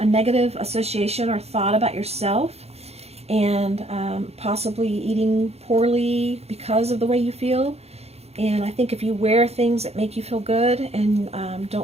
negative association or thought about yourself, and possibly eating poorly because of the way you feel. And I think if you wear things that make you feel good and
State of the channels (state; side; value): late; left; 0.30 ms